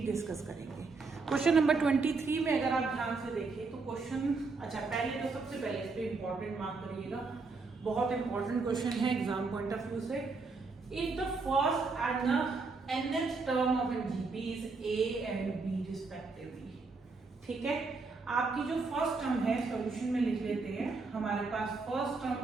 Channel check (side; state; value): left; quieter; 4.1 dB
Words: डिस्कस करेंगे। क्वेश्चन नंबर 23 में अगर आप ध्यान से देखें तो पहले तो सबसे पहले इस पे इंपॉर्टेंट मार्क करिएगा। बहुत इंपॉर्टेंट क्वेश्चन है एग्जाम पॉइंट ऑफ व्यू से। If the first and the nth term of an GP is A and B respectively। ठीक है, आपकी जो फर्स्ट टर्म है सॉल्यूशन में लिख लेते हैं। हमारे पास फर्स्ट टर्म